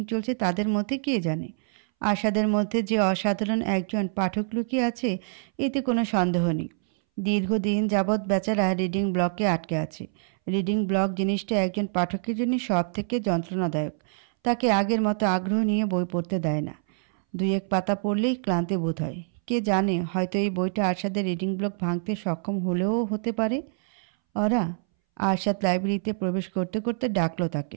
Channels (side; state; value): left; silent; 61 dB below the other